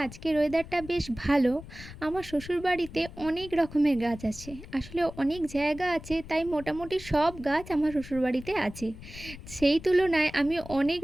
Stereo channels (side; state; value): left; noise; rumble, 15 dB below the sound